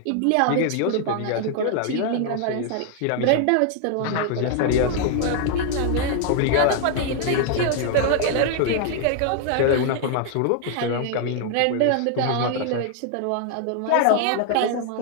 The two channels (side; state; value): both; different; correlation 0.00